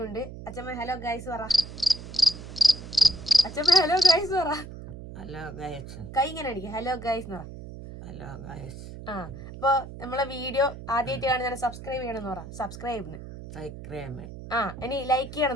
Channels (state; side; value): noise; right; hum, 12 dB below the sound